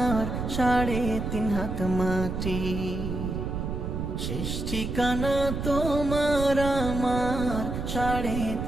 3.5 হাত মাটি। শেষ ঠিকানা তোমার আমার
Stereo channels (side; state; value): right; noise; rumble, 4 dB below the sound